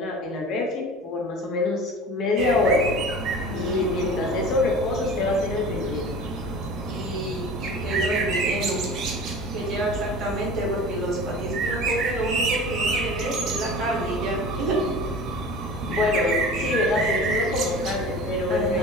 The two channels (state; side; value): normal; both; correlation 0.38